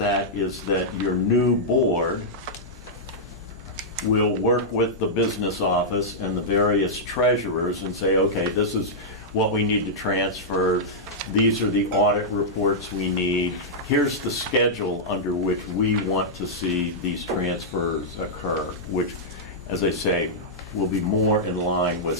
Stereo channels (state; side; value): normal; both; correlation -0.09